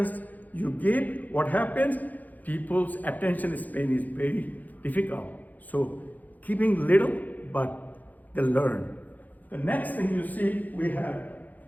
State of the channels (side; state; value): right; late; 0.081 ms